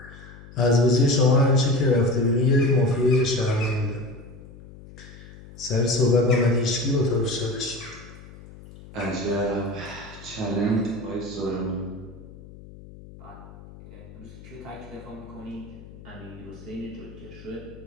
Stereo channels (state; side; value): noise; left; hum, 18 dB below the sound